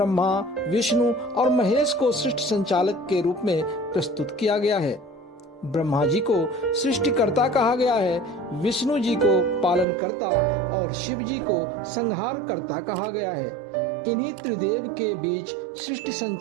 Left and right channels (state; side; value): drops out; left; at 9.9 s